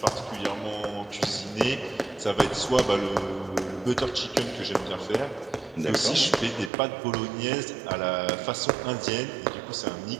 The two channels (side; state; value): left; drops out; at 6.7 s